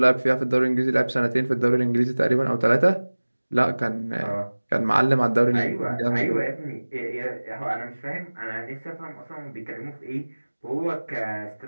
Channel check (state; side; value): inverted; both; correlation -1.00